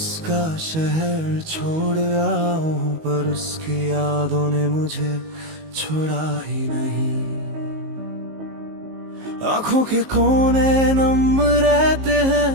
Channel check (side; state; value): left; late; 19 ms